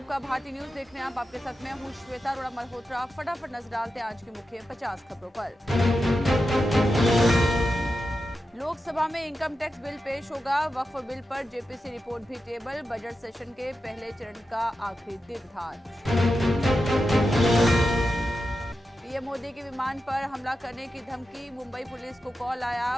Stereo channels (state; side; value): normal; both; correlation 0.90